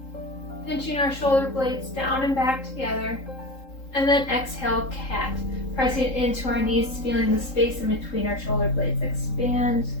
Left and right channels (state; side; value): late; right; 3.7 ms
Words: pinching our shoulder blades down and back together. And then exhale, cat, pressing into our knees, feeling the space in between our shoulder blades expand.